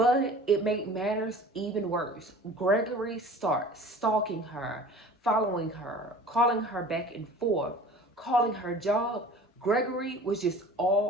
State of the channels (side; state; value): both; normal; correlation 0.43